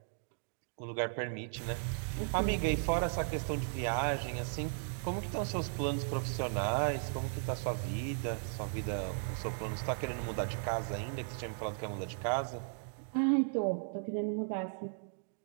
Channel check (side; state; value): left; silent; digital silence